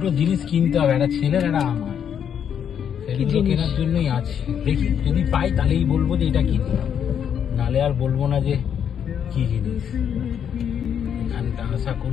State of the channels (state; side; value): quieter; right; 8.4 dB